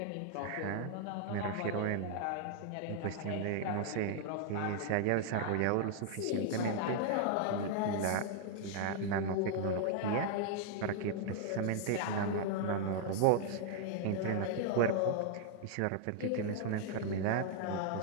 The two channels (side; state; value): both; different; correlation 0.00